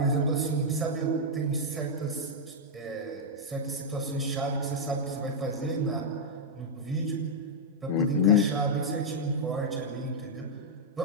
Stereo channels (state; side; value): normal; both; correlation -0.05